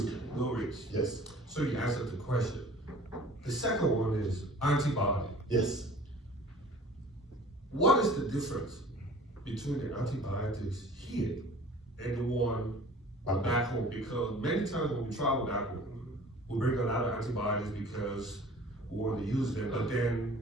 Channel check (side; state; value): both; normal; correlation 0.47